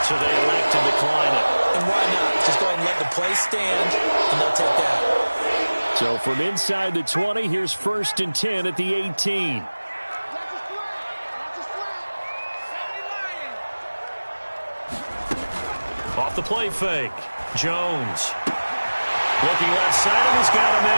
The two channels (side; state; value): both; inverted; correlation -1.00